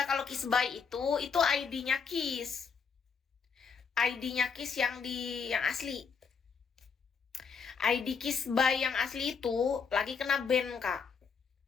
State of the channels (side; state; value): right; quieter; 5.9 dB